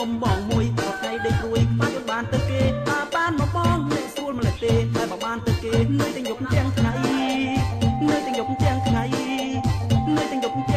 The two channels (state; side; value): identical; both; correlation 1.00